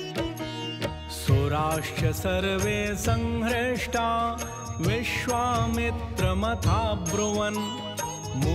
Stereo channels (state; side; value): identical; both; correlation 1.00